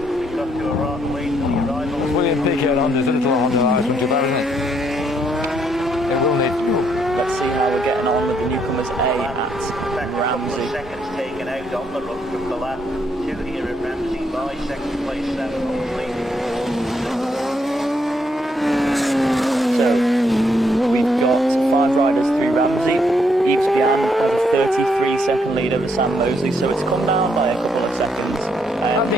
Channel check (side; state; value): both; normal; correlation 0.73